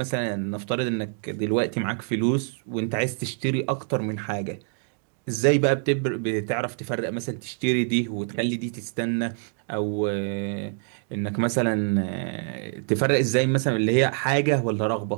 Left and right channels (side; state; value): left; silent; 61 dB below the other